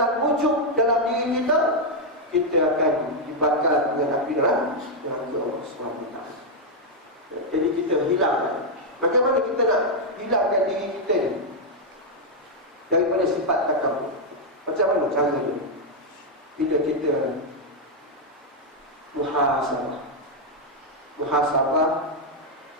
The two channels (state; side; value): normal; both; correlation -0.01